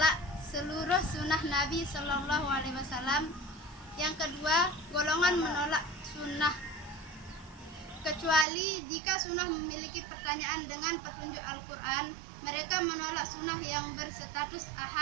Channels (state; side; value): drops out; left; at 8.5 s